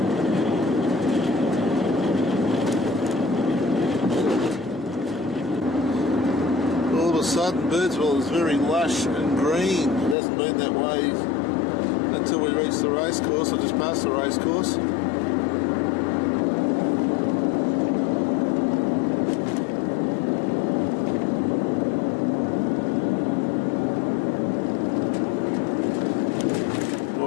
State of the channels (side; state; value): right; drops out; at 10.2 s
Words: All of a sudden, Birdsville is very lush and green. It hasn't been that way until we reach the racecourse, or just past the racecourse.